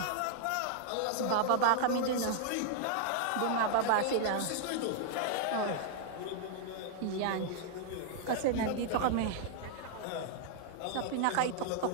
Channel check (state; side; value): different; both; correlation -0.01